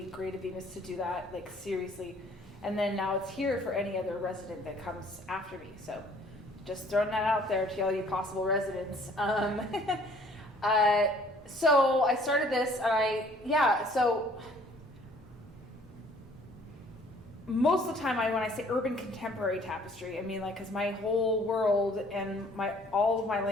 great of Bemis to do that, seriously. And then now it's here for any other resident that comes after me. So just throwing that out there to all you possible residents. So I started this, and so most of the time when I say urban contemporary tapestry, because my whole world and all of my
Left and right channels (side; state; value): both; normal; correlation 0.57